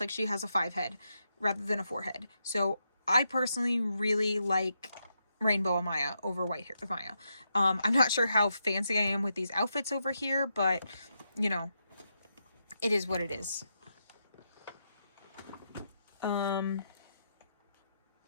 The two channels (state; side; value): inverted; both; correlation -0.83